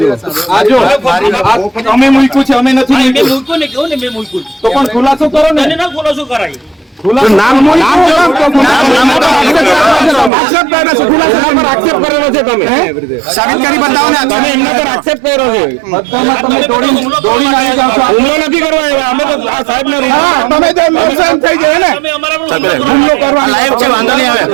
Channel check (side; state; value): left; drops out; at 10.3 s